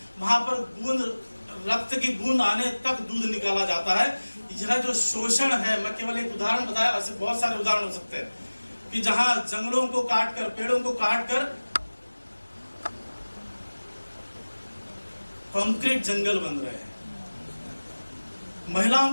वहां पर बूंद रक्त की बूंद आने तक दूध निकाला जाता है। यह जो शोषण है, मैं केवल एक उदाहरण बताया, ऐसे बहुत सारे उदाहरण हो सकते हैं कि जहां जंगलों को काटकर, पेड़ों को काटकर कंक्रीट जंगल बन रहे हैं।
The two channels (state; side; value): inverted; both; correlation -1.00